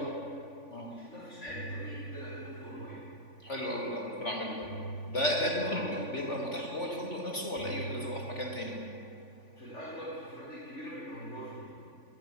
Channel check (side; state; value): right; late; 3.5 ms